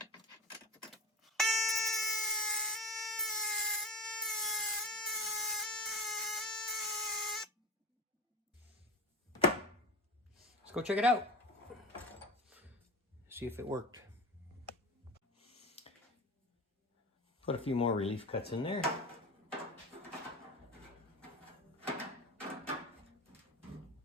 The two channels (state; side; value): normal; both; correlation 0.26